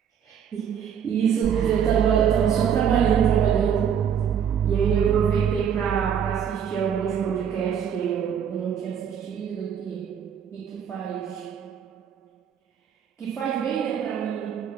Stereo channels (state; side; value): quieter; left; 8.2 dB